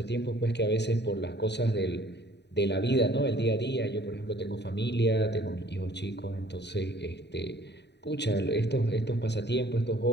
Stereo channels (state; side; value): late; right; 0.50 ms